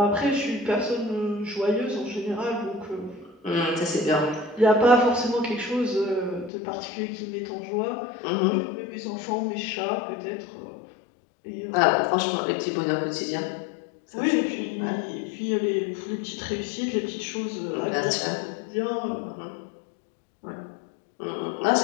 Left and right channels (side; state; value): right; drops out; at 6.5 s